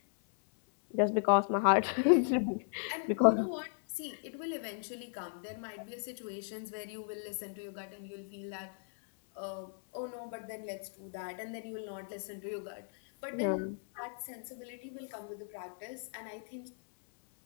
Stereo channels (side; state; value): right; silent; 54 dB below the other